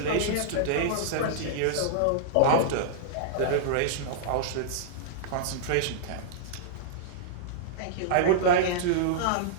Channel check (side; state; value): both; different; correlation -0.02